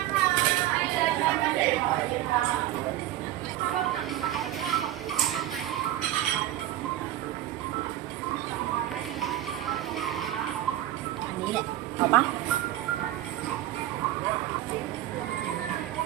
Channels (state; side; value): quieter; left; 13.6 dB